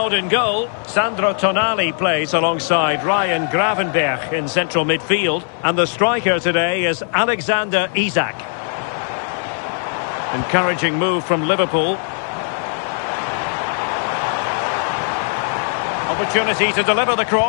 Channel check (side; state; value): right; silent; 57 dB below the other